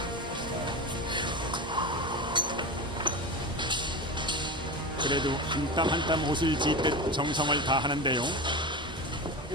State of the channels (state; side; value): normal; both; correlation 0.23